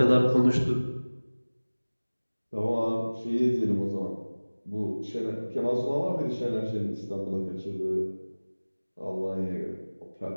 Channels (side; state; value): both; inverted; correlation -1.00